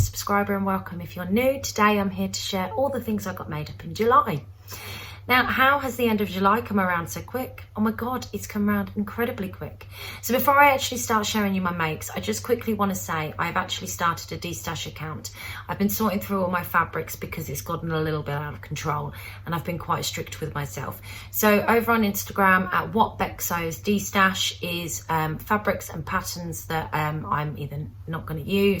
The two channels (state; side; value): identical; both; correlation 1.00